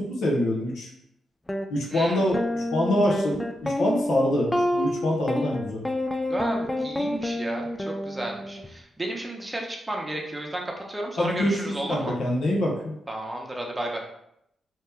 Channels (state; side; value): normal; both; correlation 0.86